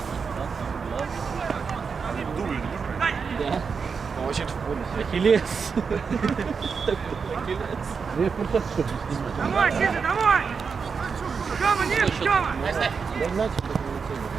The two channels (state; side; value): quieter; left; 5.6 dB